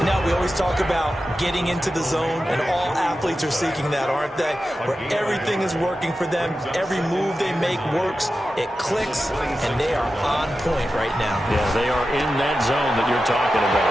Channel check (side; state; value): both; normal; correlation 0.92